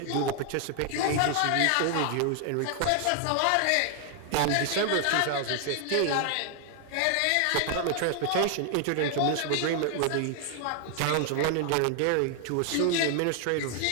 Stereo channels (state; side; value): different; both; correlation 0.00